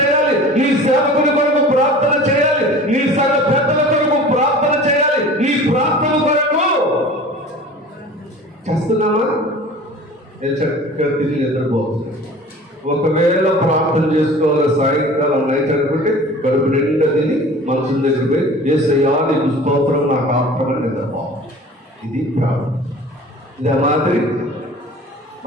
నీ సేవకుని కొరకు ప్రార్థన చేయాలి, నీ సంఘ పెద్దల కొరకు ప్రార్థన చేయాలి. నీ ప్రార్థన కొరకు చేస్తున్నామా? నేను చక్కగా తిరిగి నిద్రపోతున్నాను. ఒకవేళ ప్రార్థన చేసుకోవాలి సాయంకాలం నైట్ అనుకుంటే కడుపు నిండా తిని మనసు దగ్గర పోయి యేసయ్యా నీకు స్తోత్రం, నాకు ఆత్మని నిద్రపోవాలి. ఇది ప్రార్థన. ఇదే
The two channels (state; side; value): normal; both; correlation 0.42